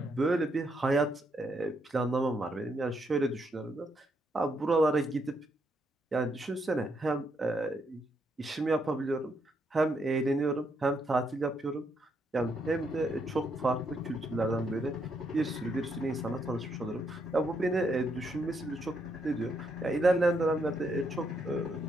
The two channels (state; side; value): normal; both; correlation 0.76